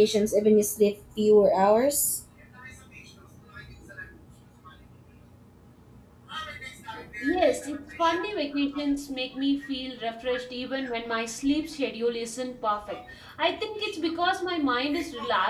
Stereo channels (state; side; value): identical; both; correlation 1.00